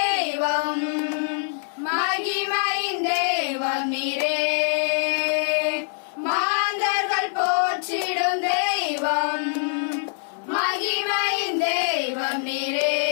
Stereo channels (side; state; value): right; silent; 63 dB below the other